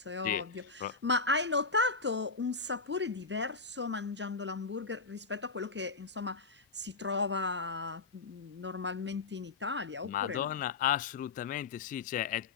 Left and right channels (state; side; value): quieter; right; 4.4 dB